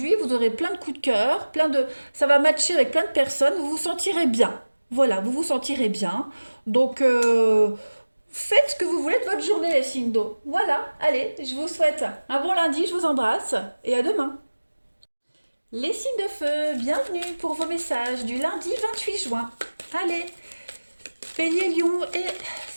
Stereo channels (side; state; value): both; inverted; correlation -1.00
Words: vous aurez plein de coups de cœur, ça va matcher avec plein de personnes, vous vous sentirez bien. Voilà, vous vous sentirez bien. Donc, faites ce que vous voulez de votre journée, les signes d'eau. Voilà, allez, je vous souhaite un bon lundi, je vous embrasse et à demain. Les signes de feu, bienvenue pour vos messages du lundi 28 juin. Allez, Bélier, Lion et